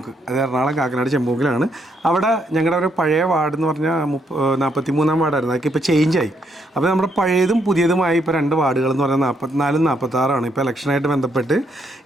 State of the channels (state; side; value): normal; both; correlation 0.75